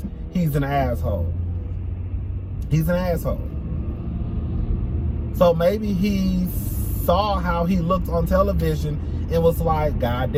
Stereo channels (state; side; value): identical; both; correlation 1.00